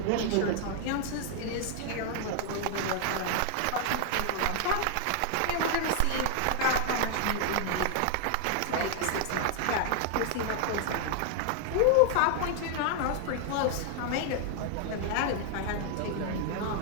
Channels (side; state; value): both; different; correlation 0.00